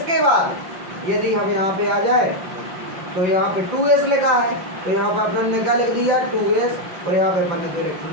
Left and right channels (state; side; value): late; left; 5.7 ms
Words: बाद यदि हम यहाँ पे आ जाए तो यहाँ पे 2s लिखा है, तो यहाँ पे अपन ने क्या लिख दिया 2s, और यहाँ पे अपन ने 2